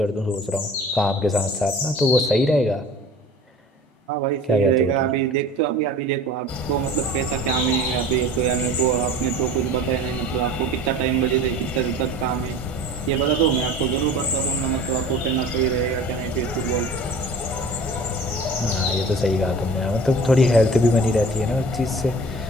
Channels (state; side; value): normal; both; correlation 0.42